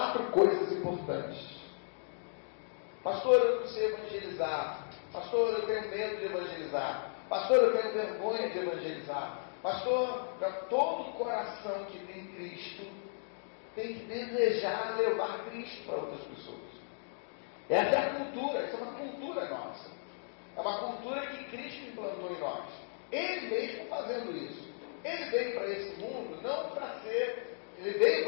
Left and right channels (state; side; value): silent; right; digital silence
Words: coisas importantes. Pastor, eu não sei evangelizar. Pastor, eu tenho medo de evangelizar. Pastor, eu tenho vergonha de evangelizar. Pastor, todo coração que tem Cristo tem que desejar levar Cristo para outras pessoas. Essa é a cultura, essa é uma cultura nossa. É uma cultura que Cristo implantou em nós. Ele mesmo fazendo isso. Ele veio para esse mundo não para ser, ele veio